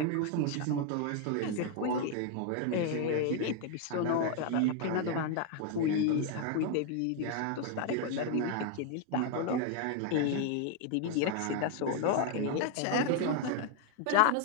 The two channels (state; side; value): different; both; correlation 0.01